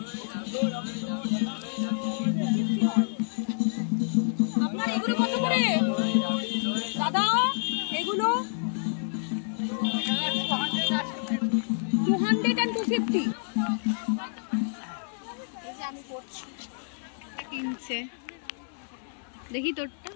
আপনার এগুলো কত করে দাদা? এগুলো 200 and 250। এই যে আমি পড়ছি, একটা কিনছে, দেখি তোরটা।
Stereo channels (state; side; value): silent; right; digital silence